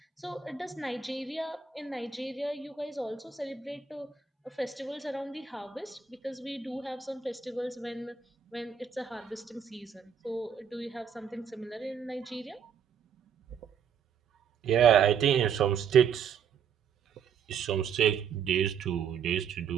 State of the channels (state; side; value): quieter; left; 7.2 dB